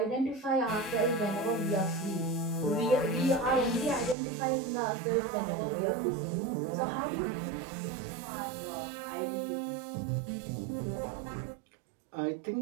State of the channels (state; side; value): drops out; left; at 4.2 s